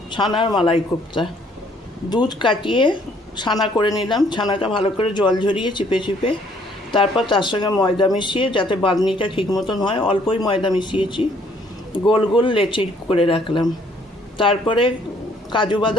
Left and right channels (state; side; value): normal; both; correlation 0.63